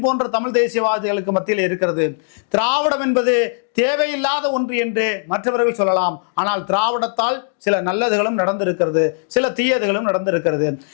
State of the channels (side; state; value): right; silent; digital silence